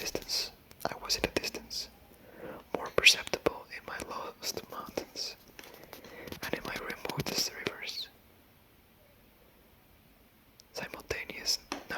I was in the distance, more perceptible in my lowest mountains and in my remotest rivers. Simultaneous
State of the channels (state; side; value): identical; both; correlation 1.00